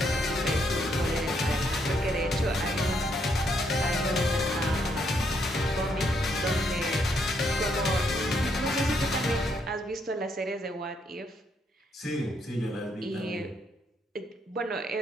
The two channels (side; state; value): both; normal; correlation 0.74